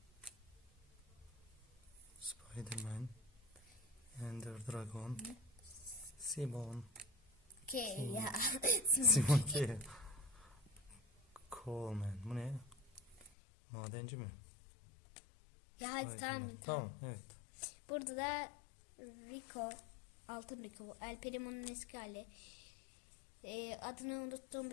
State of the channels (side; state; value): right; drops out; at 13.3 s